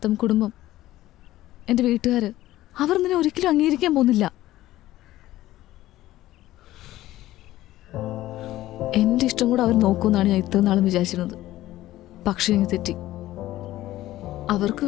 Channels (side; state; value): right; quieter; 15.3 dB